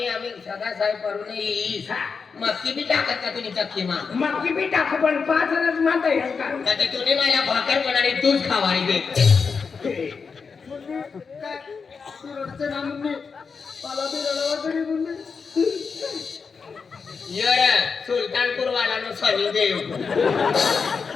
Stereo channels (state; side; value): quieter; right; 5.3 dB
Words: सदा साहेब करून येईस मक्की बी टाकत का तुम्ही चक्की मा मक्की बी टाकू पण 5 रस माता येईल का? आता तुम्ही मला भाकर बनाडी तूच खावारी दे तू रडचं ना मुन्नी मला बी रडवा करी मुन्नी यर सुलतानपूर वाला नो सनी देव